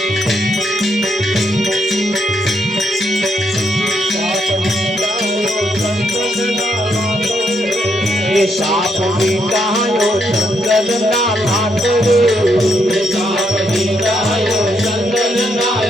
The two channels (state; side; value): normal; both; correlation 0.76